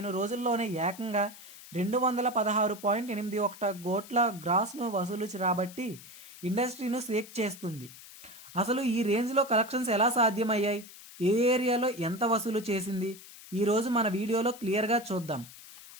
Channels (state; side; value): noise; left; hiss, 17 dB below the sound